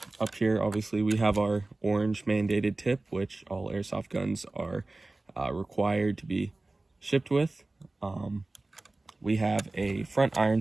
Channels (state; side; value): quieter; left; 3.0 dB